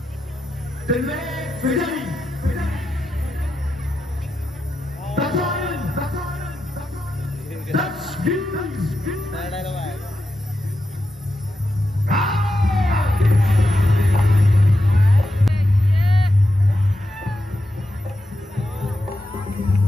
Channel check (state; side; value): normal; both; correlation 0.88